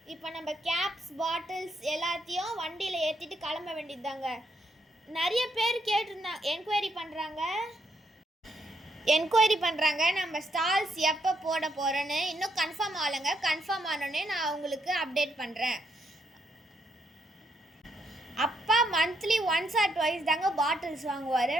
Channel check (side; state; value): both; normal; correlation 0.75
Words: இப்போ நம்ம கேப்ஸ் பாட்டில்ஸ் எல்லாத்தையும் வண்டியில் ஏற்றிட்டு கிளம்ப வேண்டியதுதாங்க. நிறைய பேர் என்கொயரி பண்ணுறாங்க நம்ம ஸ்டால்ஸ் எப்போ போட போகிறேன்னு. இன்னும் கன்ஃபார்ம் ஆகலைங்க. கன்ஃபார்ம் ஆனோடனே நான் உங்களுக்கு அப்டேட் பண்ணுறேன். அப்பா மந்த்லி ஒன்ஸ் ஆர் ட்வைஸ் தாங்க பாட்டில்ஸ் வாங்குவார்.